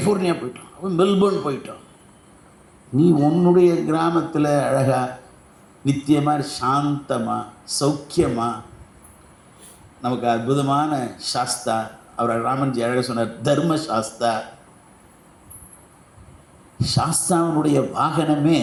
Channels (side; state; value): both; identical; correlation 1.00